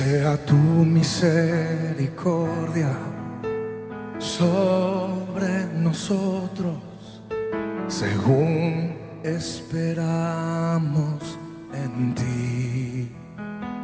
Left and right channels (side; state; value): both; identical; correlation 1.00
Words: tu misericordia sobre nosotros, según esperamos en ti.